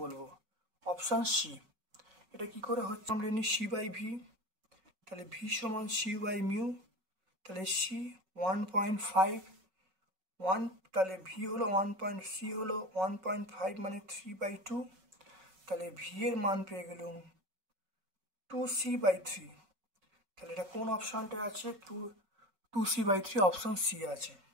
Option C. এটা কি করে হচ্ছে? আমরা জানি সি বাই ভি, তাহলে ভি সমান সি বাই মিউ, তাহলে সি 1.5, তাহলে ভি হলো 1.সি হলো 1.5 মানে 3/2, তাহলে ভি এর মান পেয়ে গেলাম 2c/3। তাহলে এটা কোন অপশনটা আছে? 2c/3, অপশন সি আছে।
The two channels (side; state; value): left; late; 5.3 ms